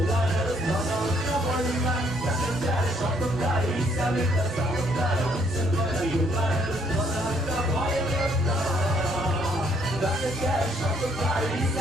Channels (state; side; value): normal; both; correlation 0.67